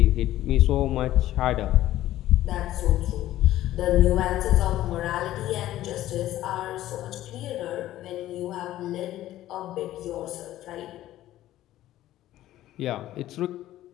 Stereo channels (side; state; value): right; quieter; 14.1 dB